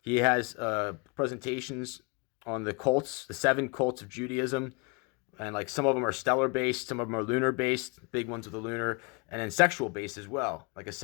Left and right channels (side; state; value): right; quieter; 31.5 dB